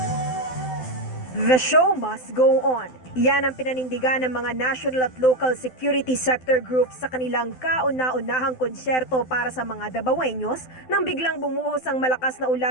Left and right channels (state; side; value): late; right; 12 ms